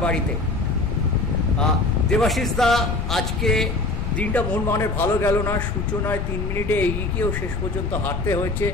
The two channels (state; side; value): noise; left; rumble, 3 dB below the sound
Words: বাড়িতে। দেবাশিস দা, আজকে দিনটা মোহনবাগানের ভালো গেল না। সূচনায় 3 মিনিটে এগিয়ে গিয়েও শেষ পর্যন্ত হারতে হয়েছে।